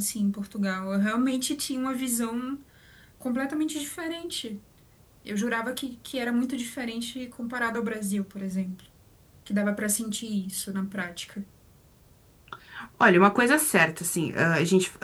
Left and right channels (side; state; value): both; identical; correlation 1.00